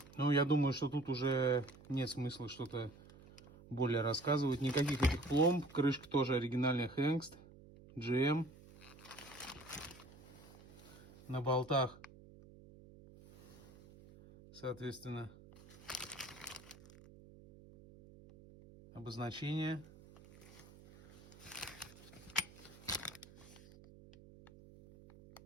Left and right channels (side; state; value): right; noise; hum, 20 dB below the sound